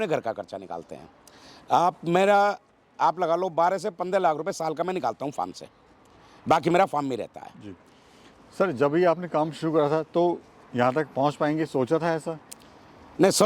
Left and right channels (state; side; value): identical; both; correlation 1.00